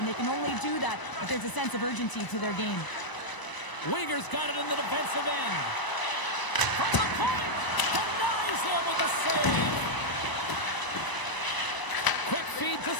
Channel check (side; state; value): right; late; 1.0 ms